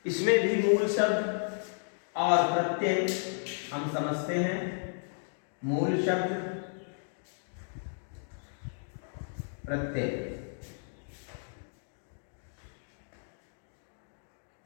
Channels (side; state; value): right; silent; digital silence